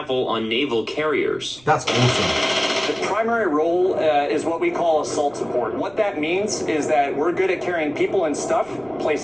on naval carriers. That's awesome. The primary role is what we call assault support. What that means is that we're good at carrying people and stuff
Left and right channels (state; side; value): noise; right; rumble, 28 dB below the sound